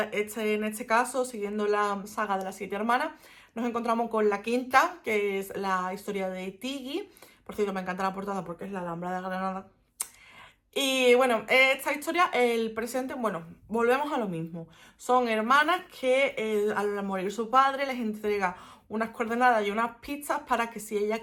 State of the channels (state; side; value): identical; both; correlation 1.00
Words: este caso, siguiendo la saga de las 7 hermanas, nos encontramos con la quinta, que es la historia de Tiggy. Por cierto, me encanta la portada porque es la Alhambra de Granada. Y bueno, esta historia, el presente, bueno, volvemos a lo mismo. Son hermanas que al morir su padre les entrega unas coordenadas y unas pistas para que, si ellas